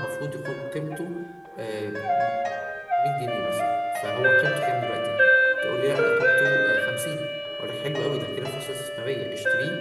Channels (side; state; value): both; identical; correlation 1.00